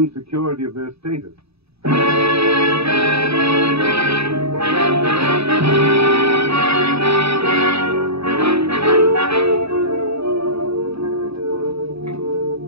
of their status.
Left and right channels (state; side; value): late; left; 0.78 ms